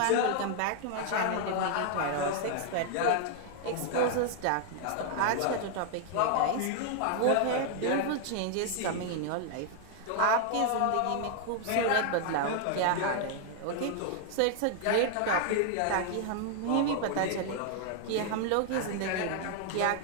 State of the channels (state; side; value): different; both; correlation 0.00